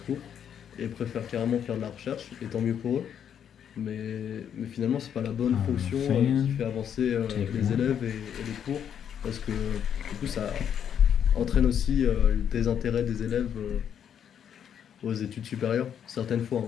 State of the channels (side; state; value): right; quieter; 8.7 dB